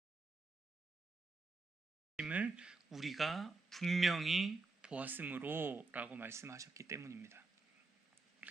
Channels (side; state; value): left; quieter; 3.6 dB